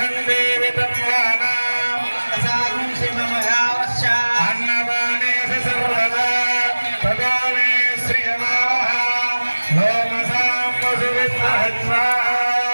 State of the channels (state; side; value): inverted; both; correlation -1.00